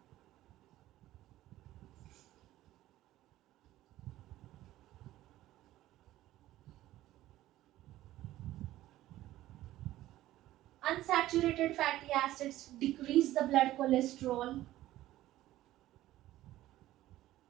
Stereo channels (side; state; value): left; quieter; 15.0 dB